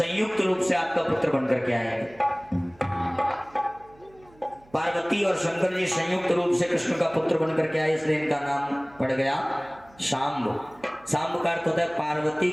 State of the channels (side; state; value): right; noise; hum, 27 dB below the sound